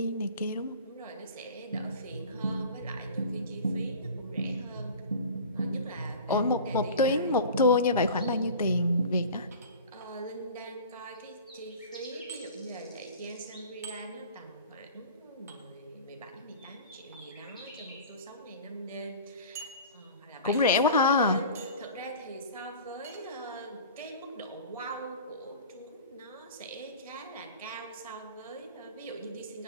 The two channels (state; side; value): inverted; both; correlation -0.40